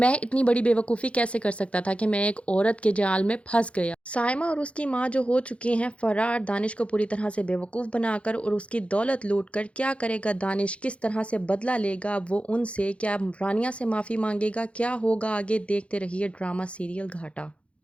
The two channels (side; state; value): right; late; 0.061 ms